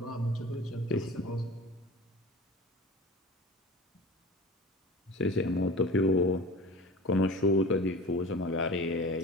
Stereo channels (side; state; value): both; normal; correlation 0.37